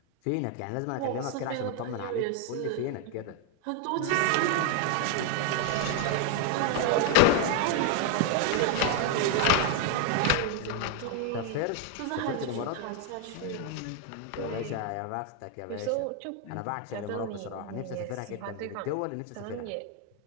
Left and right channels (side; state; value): both; different; correlation 0.01